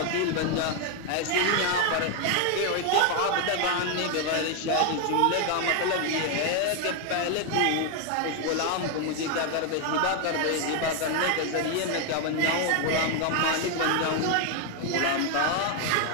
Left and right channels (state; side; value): different; both; correlation 0.01